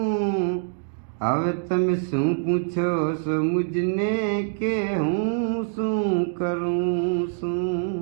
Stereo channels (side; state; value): left; silent; digital silence